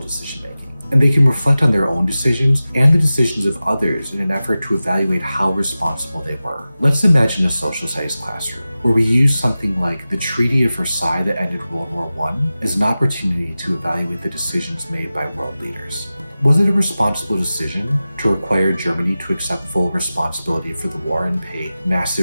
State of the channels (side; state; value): both; inverted; correlation -0.95